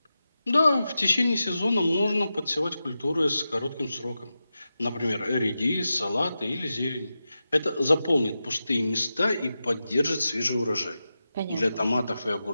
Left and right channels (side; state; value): both; inverted; correlation -0.91